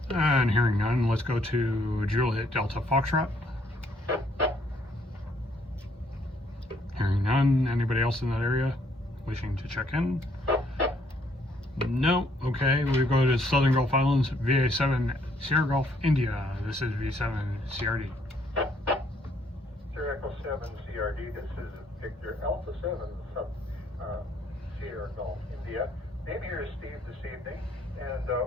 And hearing none, let's go to Juliet Delta Foxtrot. Hearing none, anybody else in that area wishing to check in? No, okay, we go to Southern Gulf Islands, VA7 Sierra Gulf, India. This is V7 CRD. Sierra Echo 7 CRD, this is Victor Alpha 7 Sierra Gulf, India. Name here is Steve this evening, and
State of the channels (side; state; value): both; normal; correlation 0.67